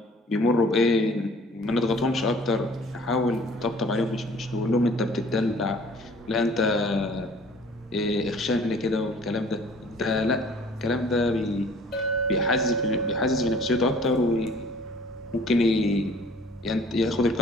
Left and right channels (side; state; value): both; normal; correlation 0.52